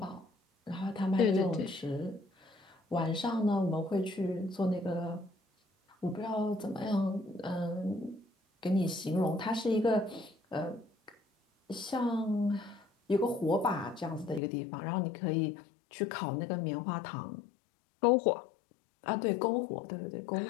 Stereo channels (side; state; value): right; drops out; at 14.4 s